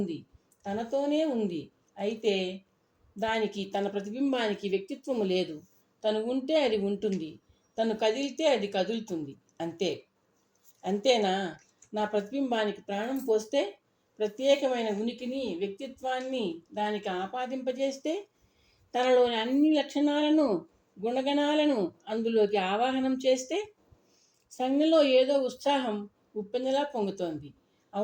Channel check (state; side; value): identical; both; correlation 1.00